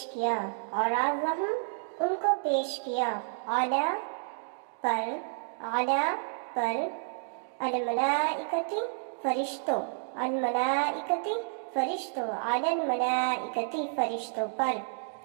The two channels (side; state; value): left; silent; digital silence